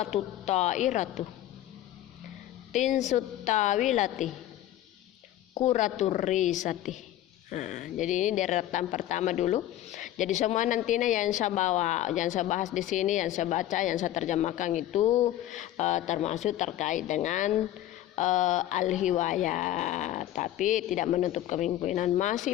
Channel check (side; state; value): right; quieter; 13.3 dB